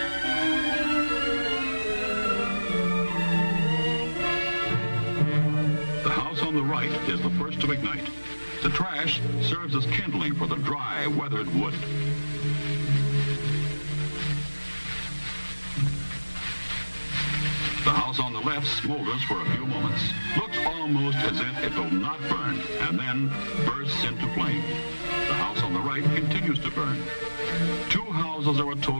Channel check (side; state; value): both; inverted; correlation -1.00